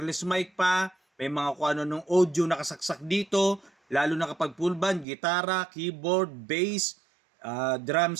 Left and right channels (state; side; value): drops out; left; at 5.1 s